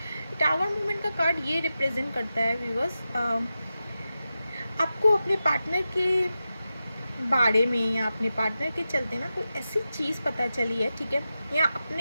टावर मूवमेंट का कार्ड ये रिप्रेजेंट करता है व्यूवर्स, आपको अपने पार्टनर के बारे में या अपने पार्टनर के चलते ना कोई ऐसी चीज़ पता चली है, ठीक है, या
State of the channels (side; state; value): both; inverted; correlation -0.92